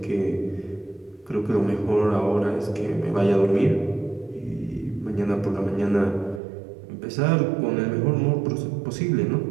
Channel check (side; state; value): left; drops out; at 6.4 s